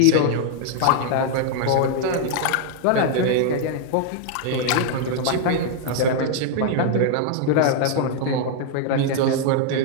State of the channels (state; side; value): different; both; correlation 0.00